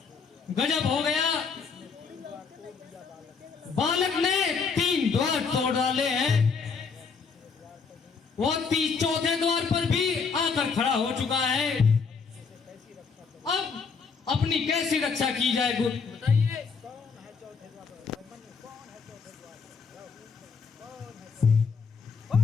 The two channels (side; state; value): right; quieter; 5.3 dB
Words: गजब हो गया। बालक ने 3 द्वार तोड़ डाले हैं, वो 4थे द्वार पर भी आकर खड़ा हो चुका है। अब अपनी कैसी रक्षा की जाए गुरु बताइए। कौन